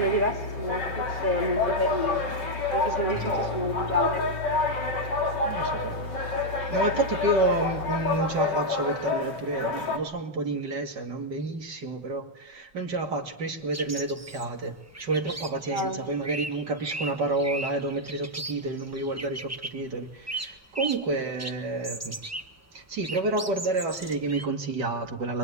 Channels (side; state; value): both; normal; correlation -0.01